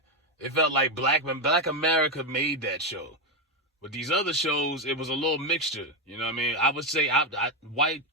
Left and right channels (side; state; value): both; normal; correlation 0.08